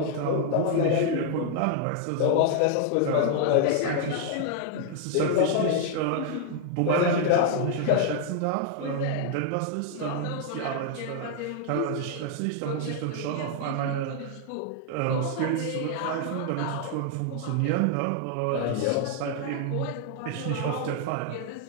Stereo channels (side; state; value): both; different; correlation 0.00